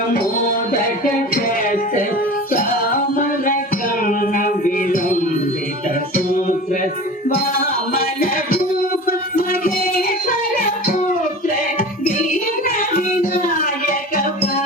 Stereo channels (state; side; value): normal; both; correlation 0.36